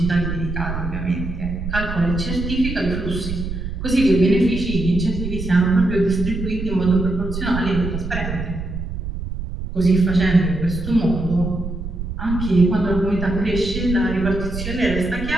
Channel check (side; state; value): right; noise; rumble, 6 dB below the sound